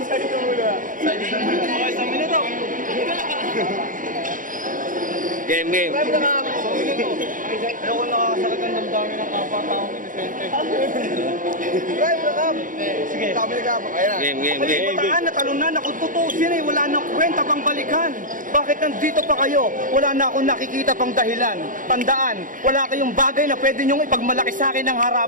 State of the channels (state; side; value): late; left; 0.39 ms